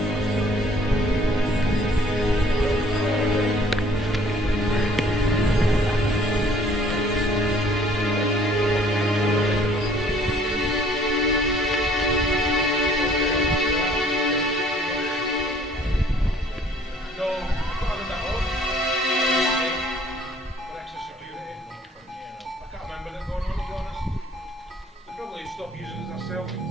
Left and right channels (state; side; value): normal; both; correlation 0.57